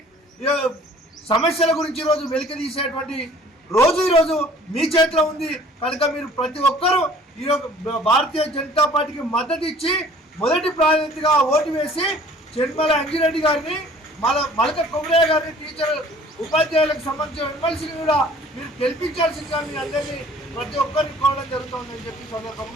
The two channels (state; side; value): normal; both; correlation 0.52